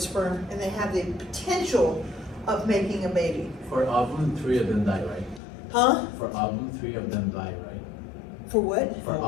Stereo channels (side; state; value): right; drops out; at 5.4 s